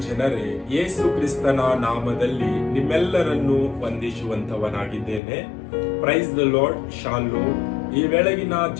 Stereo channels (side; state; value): right; drops out; at 5.2 s